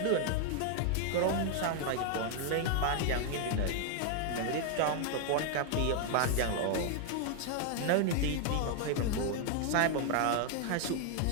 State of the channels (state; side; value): different; both; correlation 0.00